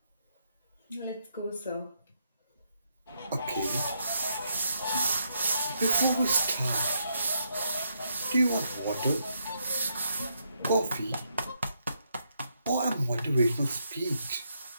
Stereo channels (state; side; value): inverted; both; correlation -0.77